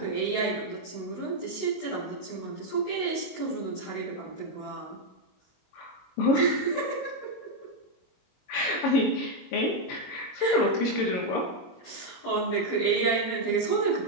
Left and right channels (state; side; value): late; right; 22 ms